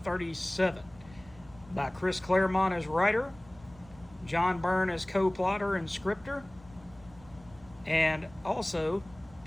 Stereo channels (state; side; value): noise; right; rumble, 23 dB below the sound